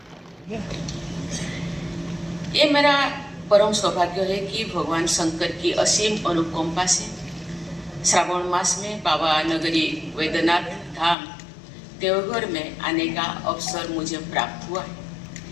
ये मेरा परम सौभाग्य है कि भगवान शंकर की असीम अनुकंपा से श्रावण मास में बाबा नगरी वैद्यनाथ धाम देवघर में आने का अवसर मुझे प्राप्त हुआ है।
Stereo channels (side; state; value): right; drops out; at 11.2 s